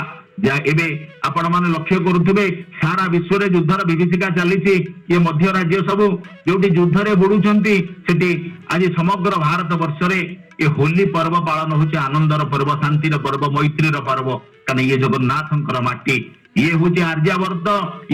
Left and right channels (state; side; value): identical; both; correlation 1.00